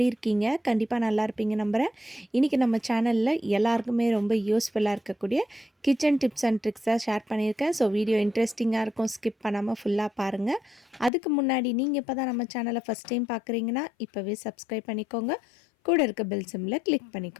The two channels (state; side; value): drops out; right; at 11.1 s